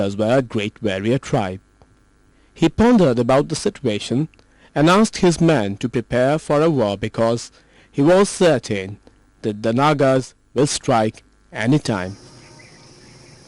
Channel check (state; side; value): identical; both; correlation 1.00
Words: were a great warrior tribe. He pondered about the situation and asked his men to prepare for a war because he was certain that the Nagas will strike any time.